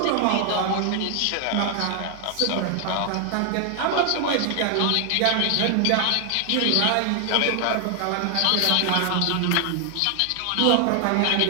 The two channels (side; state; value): both; different; correlation 0.00